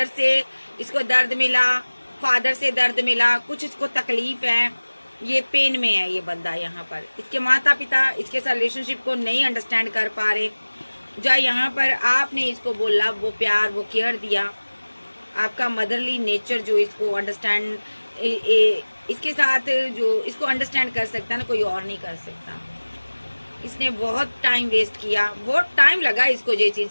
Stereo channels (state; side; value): inverted; both; correlation -1.00